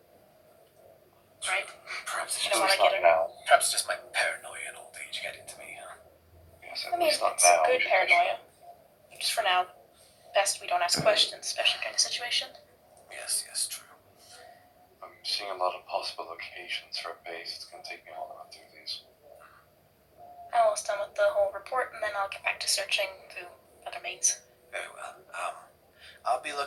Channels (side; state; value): both; identical; correlation 1.00